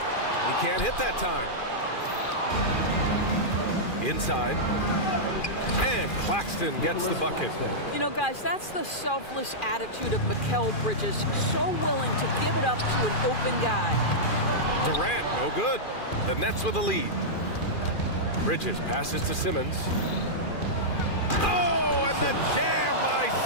can't hit that time. Inside. And Claxton gets the bucket. You know, guys, that's the selfless attitude of Mikal Bridges. So willing to give it up to an open guy. Durant, no good. The Nets with a lead. Bridges passes to Simmons. Oh, and the jam by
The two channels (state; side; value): late; right; 2.4 ms